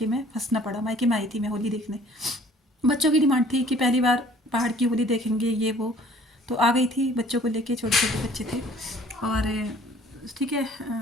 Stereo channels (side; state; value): both; normal; correlation 0.54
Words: में फंसना पड़ा। मायके में आई थी मैं होली देखने। बच्चों की डिमांड थी कि पहली बार पहाड़ की होली देखेंगे, ये वो। तो आ गई थी बच्चों को लेके। छोटे छोटे बच्चे थे और ठीक है